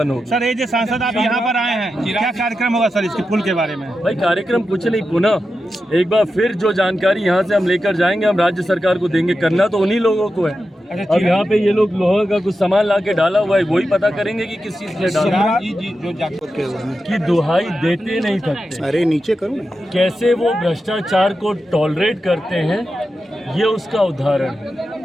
होगी। सर ये जो सांसद आप यहाँ पर आए हैं, क्या कार्यक्रम होगा सर इसके पुल के बारे में? भाई कार्यक्रम कुछ नहीं, पुनः एक बार फिर जो जानकारी यहाँ से हम लेकर जाएंगे, हम राज्य सरकार को देंगे। करना तो उन्हीं लोगों को है। अब यहाँ पे ये लोग लोहा का कुछ सामान ला के डाला हुआ है, वही पता करेंगे कि किस चीज से डाला, कि दुहाई देते नहीं थकते। अरे नीचे करो, कैसे वो भ्रष्टाचार को टॉलरेट करते हैं, ये उसका उदाहरण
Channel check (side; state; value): both; normal; correlation 0.90